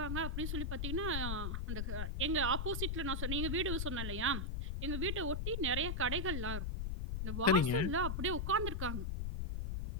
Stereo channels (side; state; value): left; noise; rumble, 1 dB below the sound